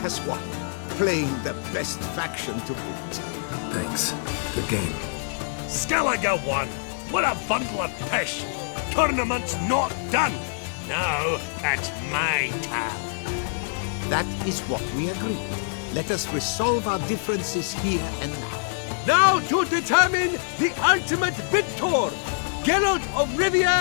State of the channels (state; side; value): silent; right; digital silence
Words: has won, playing the best faction to boot. Thanks. Good game. Skellige won! What a bundle of pish! Tournament's not done! Now, it's my turn. That is what we agreed. Let us resolve our differences here and now. Now to determine the ultimate victor! Geralt of